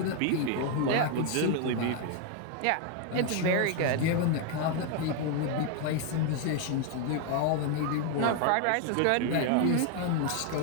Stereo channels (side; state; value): both; different; correlation 0.01